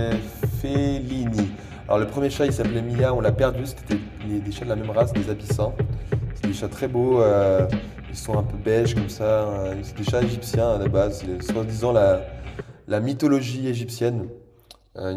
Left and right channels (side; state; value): both; identical; correlation 1.00